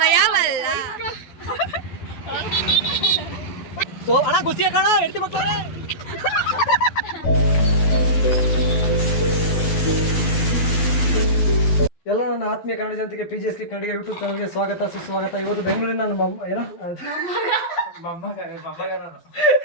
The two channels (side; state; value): right; late; 12 ms